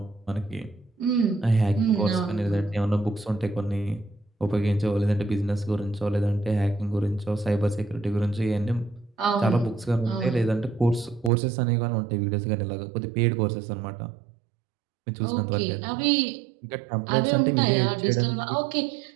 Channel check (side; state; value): left; drops out; at 11.3 s